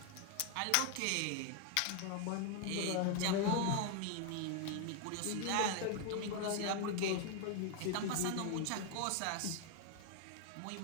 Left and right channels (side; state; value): both; different; correlation 0.00